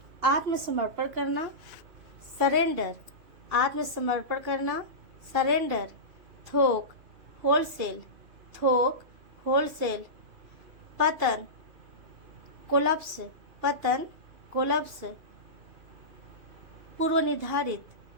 आत्मसमर्पण करना, सरेंडर, आत्मसमर्पण करना, सरेंडर। थोक, होलसेल, थोक, होलसेल। पतन, कोलप्स, पतन, कोलप्स। पूर्व निर्धारित,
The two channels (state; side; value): late; left; 2.7 ms